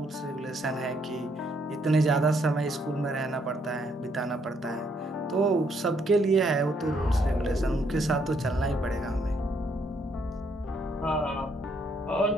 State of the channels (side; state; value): both; normal; correlation 0.71